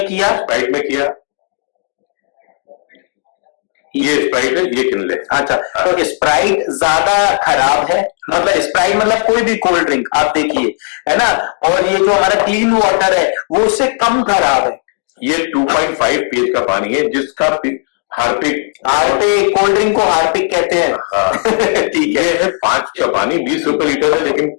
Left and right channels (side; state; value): right; silent; 68 dB below the other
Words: किया, ये स्प्राइट है, ये किनले। अच्छा, तो स्प्राइट ज्यादा खराब है, मतलब स्प्राइट मतलब कोई भी कोल्ड ड्रिंक आप देखिए, है ना, और ये जो हमारा क्लीन वाटर है वो उससे कम खराब है। ये 2.5 pH का पानी है, जिसका हार्पिक कोल्ड ड्रिंक को हार्पिक कहते हैं। हाँ। ठीक है, 5 का पानी 20 रुपए लीटर है, लेकिन